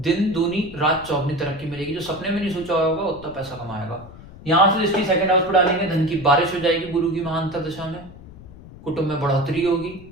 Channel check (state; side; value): noise; left; rumble, 17 dB below the sound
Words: दूनी रात चौगनी तरक्की मिलेगी। जो सपने में नहीं सोचा होगा उतना पैसा कमाएगा। यहां से दृष्टि 2nd हाउस पर डालेंगे, धन की बारिश हो जाएगी गुरु की महाअंतर दशा में, कुटुंब में बढ़ोतरी होगी,